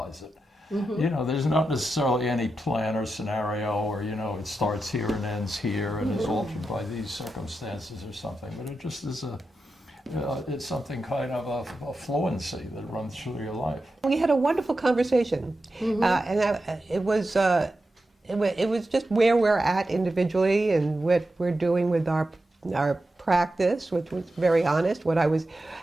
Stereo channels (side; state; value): both; normal; correlation 0.90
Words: it. Mm-hmm. There's not necessarily any plan or scenario or, it starts here and ends here and is altered by these circumstances or something, but it just is it's something kind of a fluency that runs through your life. We had a wonderful conversation, mm-hmm. It was just where we're at individually and what we're doing with our practice, which was very honest,